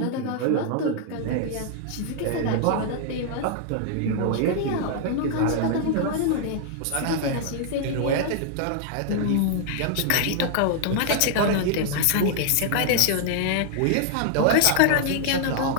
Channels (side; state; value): both; different; correlation 0.00